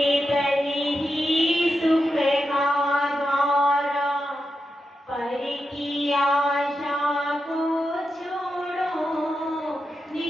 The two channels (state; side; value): normal; both; correlation 0.88